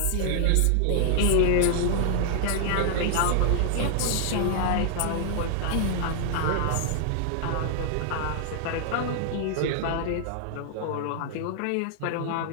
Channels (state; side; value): different; both; correlation -0.01